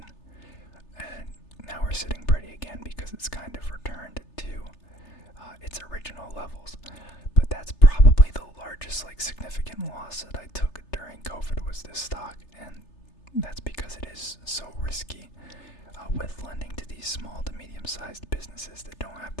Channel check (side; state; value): right; late; 3.3 ms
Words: And now we're sitting pretty again because it's kind of returned to its original levels. But that's probably the largest significant loss that I took during COVID was this stock, and that's because it is so risky with lending to these small to medium-sized businesses that don't have